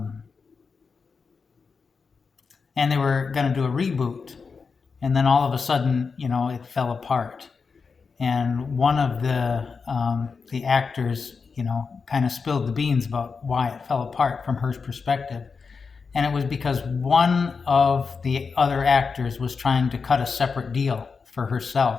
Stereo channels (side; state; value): right; quieter; 5.1 dB